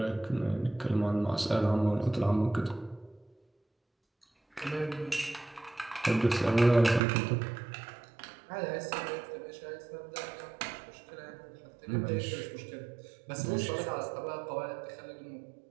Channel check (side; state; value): left; drops out; at 7.0 s